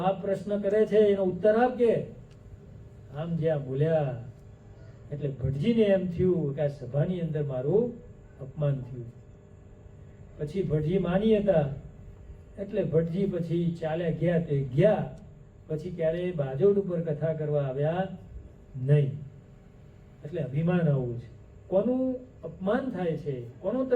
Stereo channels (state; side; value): identical; both; correlation 1.00